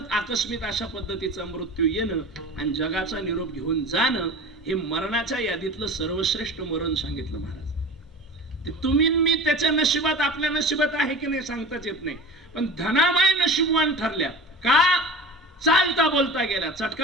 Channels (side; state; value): both; normal; correlation 0.35